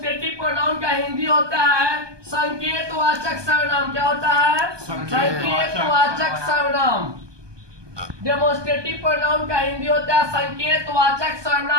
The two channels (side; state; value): left; late; 1.2 ms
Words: प्रोनाउन का हिंदी होता है संकेतवाचक सर्वनाम। क्या होता है? संकेतवाचक सर्वनाम। डेमोन्स्ट्रेटिव प्रोनाउन का हिंदी होता है संकेतवाचक